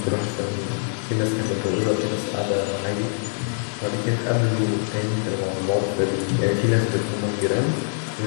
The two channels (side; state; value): right; silent; 63 dB below the other